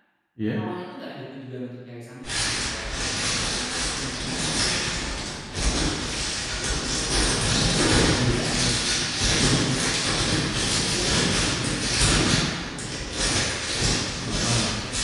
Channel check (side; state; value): both; identical; correlation 1.00